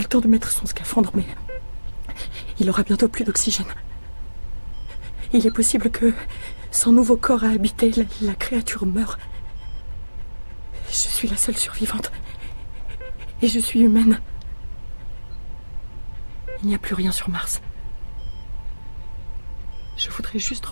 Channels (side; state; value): both; inverted; correlation -1.00